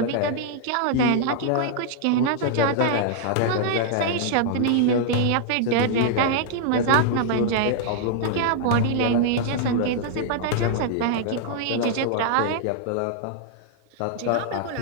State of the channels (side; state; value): both; different; correlation -0.01